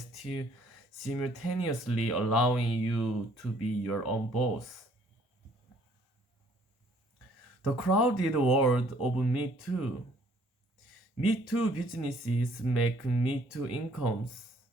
simultaneously allowing you to be your own boss? The crowded world of Me Too. Me Too businesses make Me Too incomes.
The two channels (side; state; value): both; normal; correlation 0.61